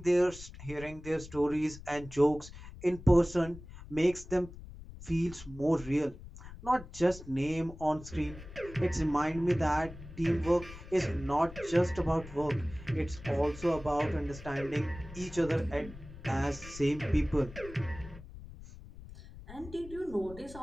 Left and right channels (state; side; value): noise; left; rumble, 15 dB below the sound